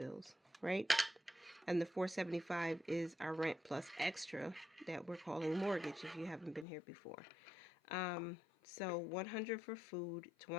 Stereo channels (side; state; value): right; drops out; at 6.7 s